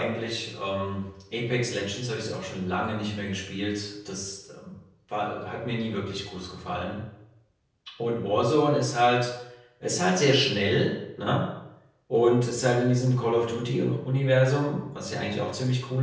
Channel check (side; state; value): both; identical; correlation 1.00